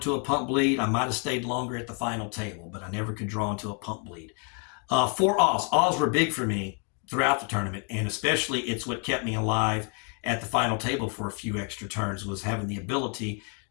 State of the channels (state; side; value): quieter; right; 39.3 dB